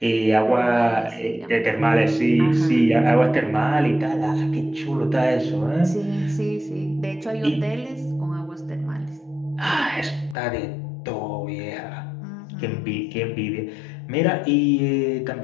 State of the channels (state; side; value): drops out; right; at 10.4 s